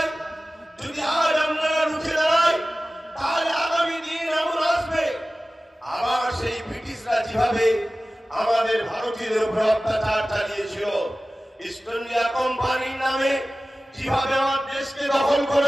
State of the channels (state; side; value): normal; both; correlation 0.96